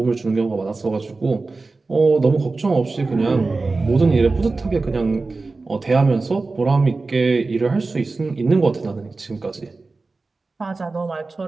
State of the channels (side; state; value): left; quieter; 3.7 dB